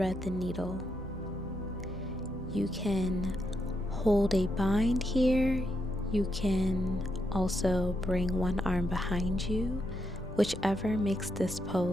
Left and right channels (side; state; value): both; normal; correlation 0.81